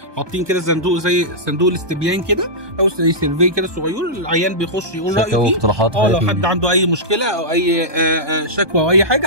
حاطين كده صندوق زي صندوق الاستبيان كده او زي سيرفي كده صغير، العيان بيخش يقول رايه فيه. لو حد عنده اي مشكله او اي شكوى او اي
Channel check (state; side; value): late; left; 1.2 ms